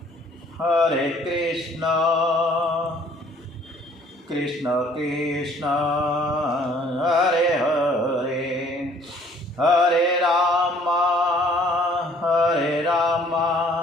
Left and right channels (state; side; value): normal; both; correlation 0.58